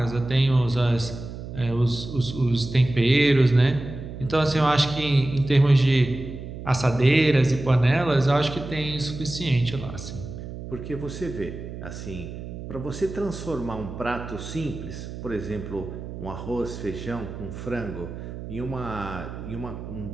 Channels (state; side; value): noise; right; hum, 10 dB below the sound